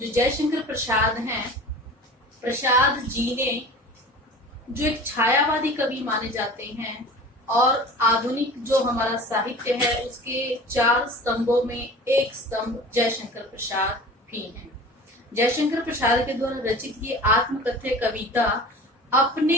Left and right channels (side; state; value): both; normal; correlation 0.39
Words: जयशंकर प्रसाद हैं, प्रसाद जी ने जो एक छायावादी कवि माने जाते हैं और आधुनिक जो हमारा साहित्य है उसके 4 स्तंभों में एक स्तंभ जयशंकर प्रसाद भी हैं। जयशंकर प्रसाद के द्वारा रचित ये आत्मकथ्य कविता अपने